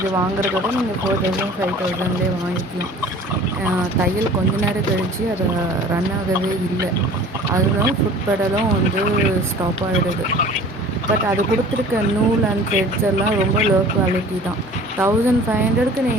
வாங்குறதோட நீங்கள் 4000 5000லேயே வாங்கிக்கலாம். தையல் கொஞ்ச நேரம் கழித்து அதை ரன் ஆகவே இல்லை. அதுதான் ஃபுட் பெடலும் வந்து ஸ்டாப் ஆகிடுது. பட் அது கொடுத்துருக்க நூல் அண்ட் த்ரெட்ஸ் எல்லாம் ரொம்ப லோ குவாலிட்டி தான். 1500க்கு நீ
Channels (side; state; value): both; normal; correlation 0.45